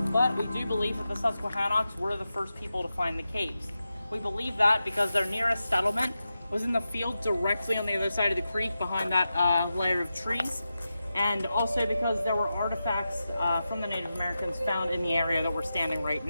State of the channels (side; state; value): both; inverted; correlation -0.91